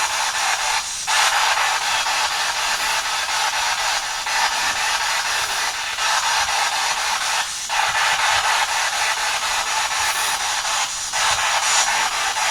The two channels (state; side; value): identical; both; correlation 1.00